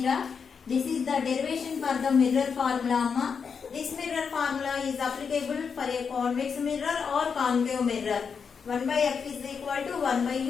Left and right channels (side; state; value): right; quieter; 6.1 dB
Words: ra. This is the derivation for the mirror formula. Amma. This mirror formula is applicable for a convex mirror or concave mirror. 1 by f is equal to 1 by